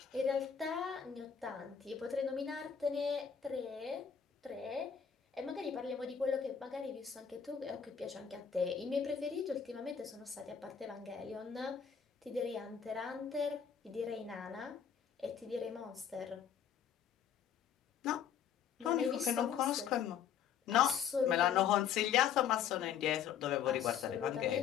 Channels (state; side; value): quieter; right; 7.9 dB